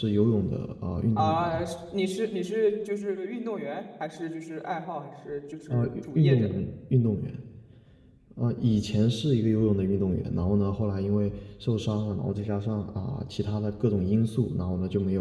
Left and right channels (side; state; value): both; identical; correlation 1.00